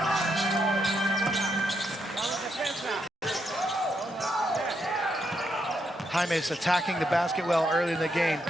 Jaime's attacking the basket well early in the game.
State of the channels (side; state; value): both; normal; correlation 0.80